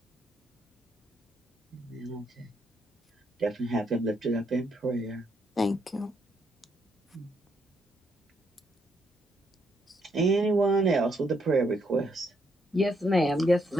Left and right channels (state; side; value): normal; both; correlation 0.75